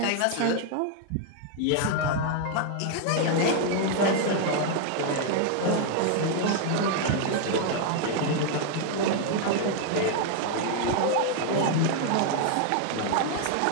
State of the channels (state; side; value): different; both; correlation 0.00